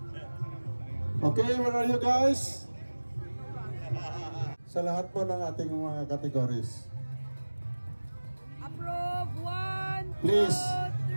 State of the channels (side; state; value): both; inverted; correlation -1.00